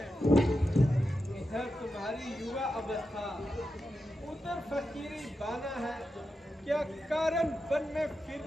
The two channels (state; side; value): normal; both; correlation 0.89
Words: इधर तुम्हारी युवा अवस्था, उधर फकीरी बाना है। क्या कारण वन में